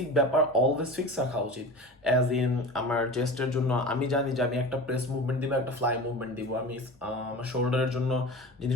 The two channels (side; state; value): both; normal; correlation 0.33